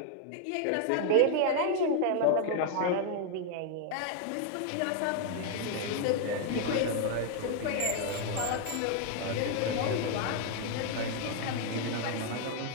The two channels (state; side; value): different; both; correlation 0.00